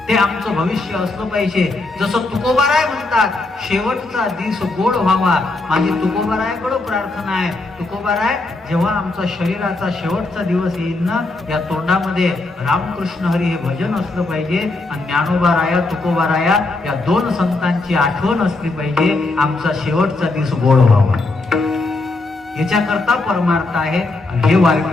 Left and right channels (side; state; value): right; quieter; 3.1 dB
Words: ते आमचं भविष्य असलं पाहिजे. जसं तुकोबाराय म्हणतात, शेवटचा दिवस गोड व्हावा. माझी तुकोबारायाकडे प्रार्थना आहे, तुकोबाराय जेव्हा आमचा शरीराचा शेवटचा दिवस येईल ना, या तोंडामध्ये रामकृष्ण हरी हे भजन असलं पाहिजे, आणि ज्ञानोबाराया, तुकोबाराया या दोन संतांची आठवण असली पाहिजे. आमचा शेवटचा दिवस गोड व्हावा. याच्याकरता परमार्थ आहे, आणि हे